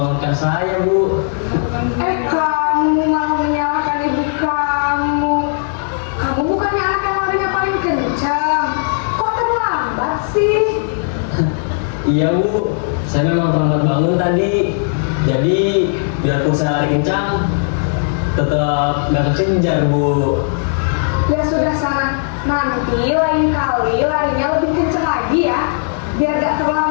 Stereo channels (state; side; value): silent; right; 66 dB below the other